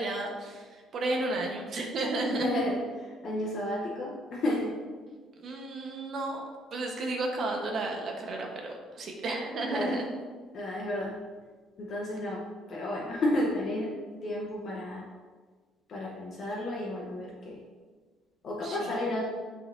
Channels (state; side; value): normal; both; correlation 0.67